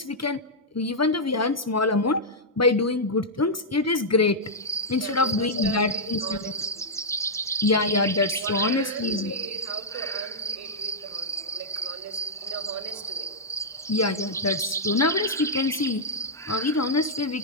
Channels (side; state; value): both; normal; correlation -0.07